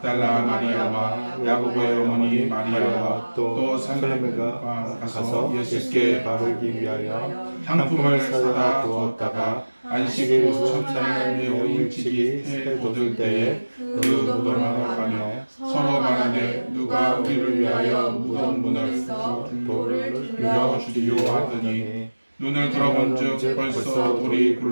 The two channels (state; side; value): inverted; both; correlation -1.00